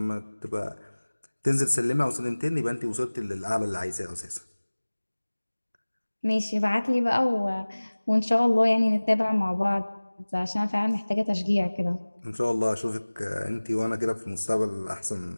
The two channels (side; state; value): both; inverted; correlation -1.00